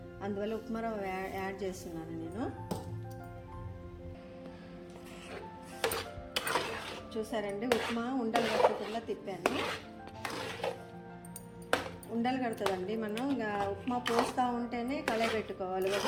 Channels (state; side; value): identical; both; correlation 1.00